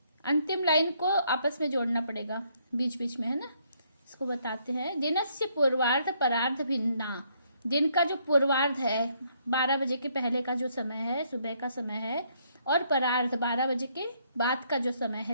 अंतिम लाइन को आपस में जोड़ना पड़ेगा बीच बीच में, है ना। इसको बताते हैं। दिनस्य पूर्वार्ध परार्ध भिन्ना, दिन का जो पूर्वार्ध है 12 बजे के पहले का जो समय है, सुबह का समय है, और परार्ध 12 बजे के बाद का जो समय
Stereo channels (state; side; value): inverted; both; correlation -0.70